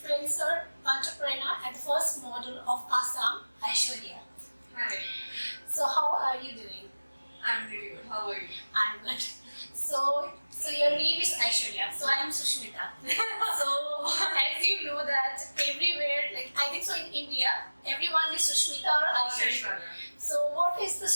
entrepreneur and the first model of Assam, Aishwarya. Hi, So how are you doing? I'm really good. How are you? I'm good. So your name is Aishwarya. So I am Sushmita. So as you know that everywhere, like I think so in India, everyone is Sushmita or Aishwarya. So what is the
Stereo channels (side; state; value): both; inverted; correlation -1.00